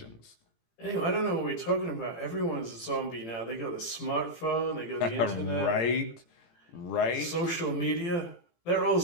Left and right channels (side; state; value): right; late; 18 ms